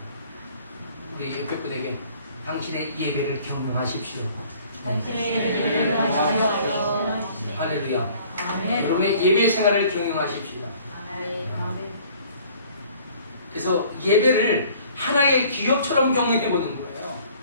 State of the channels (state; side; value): inverted; both; correlation -0.54